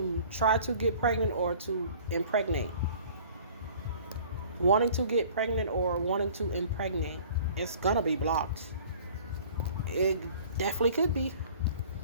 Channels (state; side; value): inverted; both; correlation -0.49